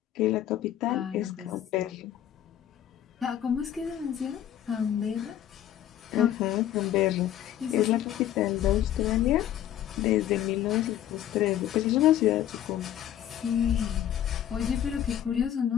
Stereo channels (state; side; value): quieter; right; 11.4 dB